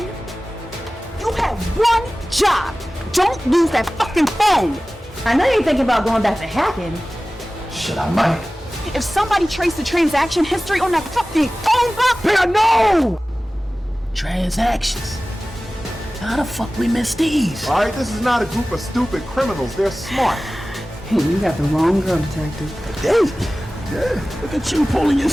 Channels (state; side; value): normal; both; correlation 0.97